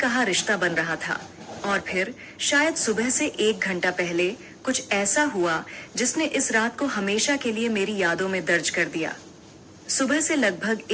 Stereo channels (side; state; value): both; identical; correlation 1.00